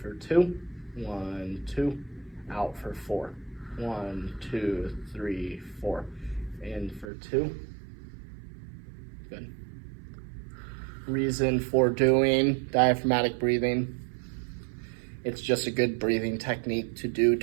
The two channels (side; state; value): left; drops out; at 7.1 s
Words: for 2, 1, 2, out for 4. 1, 2, 3, 4. In for 2. Good. Reason for doing diaphragmatic breathing. It's just a good breathing technique to do